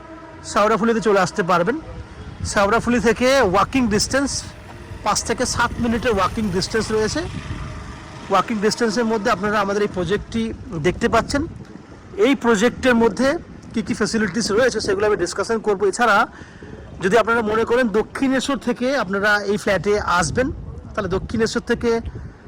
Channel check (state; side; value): identical; both; correlation 1.00